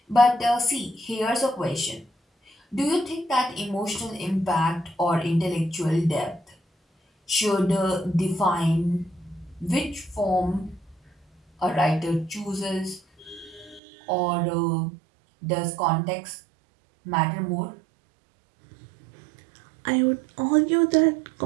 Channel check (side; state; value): left; drops out; at 13.8 s